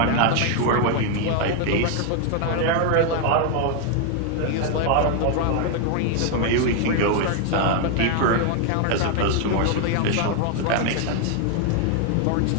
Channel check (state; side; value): different; both; correlation 0.00